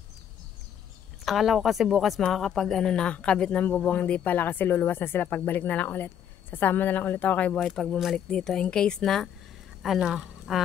Akala ko kasi bukas makakapag ano na, kabit ng bubong, hindi pala kasi luluwas na sila, pagbalik na lang ulit. Sasama na lang ulit ako kay Boy pag bumalik dito. In case na, ano,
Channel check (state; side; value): quieter; right; 9.3 dB